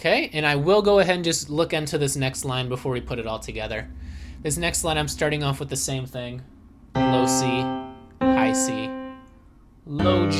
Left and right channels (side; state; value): both; identical; correlation 1.00